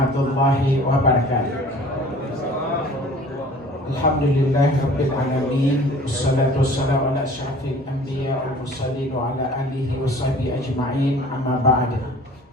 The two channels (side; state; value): both; normal; correlation 0.48